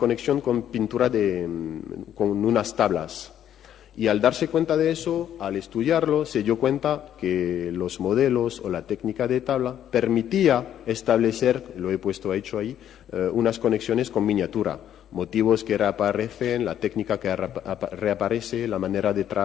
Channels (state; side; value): quieter; right; 10.5 dB